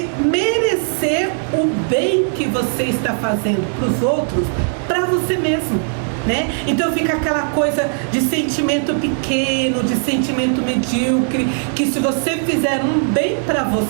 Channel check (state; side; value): silent; left; 67 dB below the other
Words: merecer o bem que você está fazendo para os outros, para você mesmo, né? Então fica aquela coisa de sentimento pequeno, de sentimento medíocre, que se você fizer um bem para